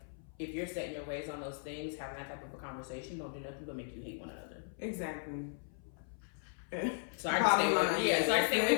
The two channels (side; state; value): right; silent; 53 dB below the other